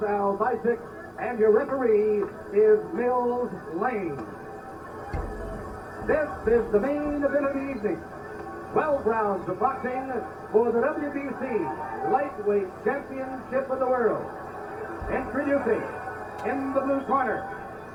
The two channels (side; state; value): both; identical; correlation 1.00